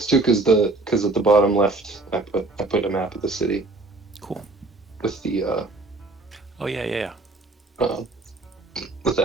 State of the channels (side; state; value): left; quieter; 3.2 dB